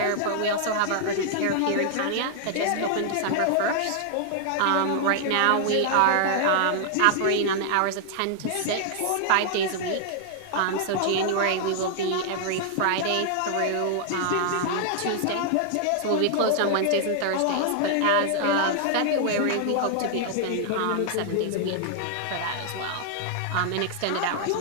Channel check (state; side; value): different; both; correlation -0.01